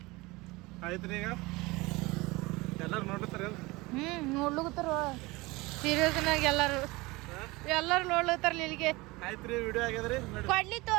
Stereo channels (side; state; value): left; quieter; 22.6 dB